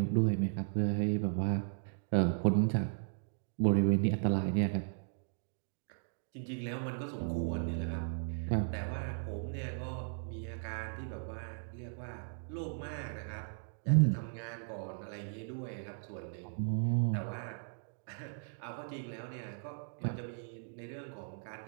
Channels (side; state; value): left; silent; digital silence